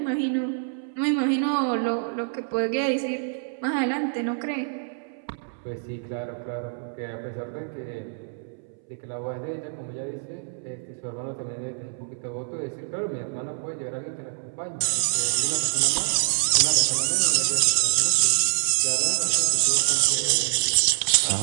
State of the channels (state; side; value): silent; left; 61 dB below the other